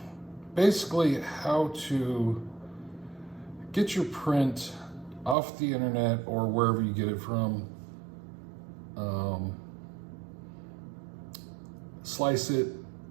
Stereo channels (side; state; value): left; drops out; at 5.4 s